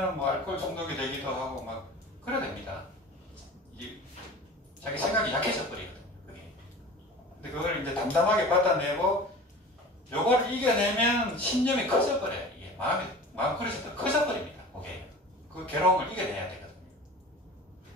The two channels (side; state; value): both; normal; correlation 0.38